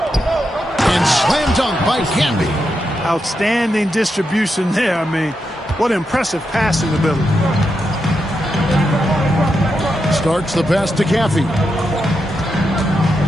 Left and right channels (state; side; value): normal; both; correlation 0.85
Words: slam dunk by Canby. Outstanding distribution there. I mean, what impressive passing ability. Starts the pass to Caffey.